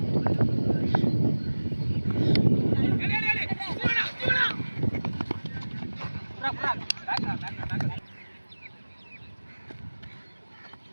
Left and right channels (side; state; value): both; inverted; correlation -1.00